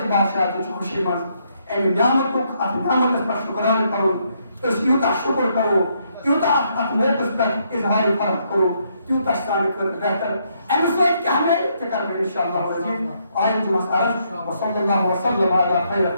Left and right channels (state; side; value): inverted; both; correlation -0.74